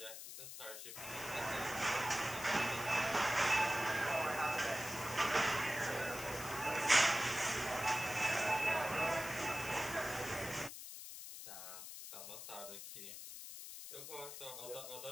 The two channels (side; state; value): left; noise; hiss, 10 dB below the sound